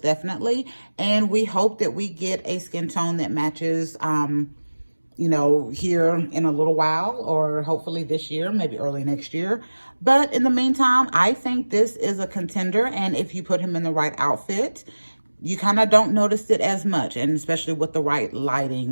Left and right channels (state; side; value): inverted; both; correlation -1.00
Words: definitely. And we hope that we get a skin tone that matches, you know, here in a little while, or hopefully this year, maybe early next year. But in the meantime, I think this is a contender. And if you put him in the right outfit, you kind of don't notice it as much, and especially with the right